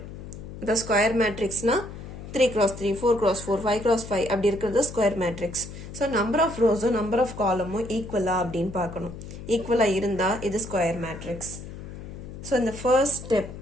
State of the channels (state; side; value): noise; left; hum, 12 dB below the sound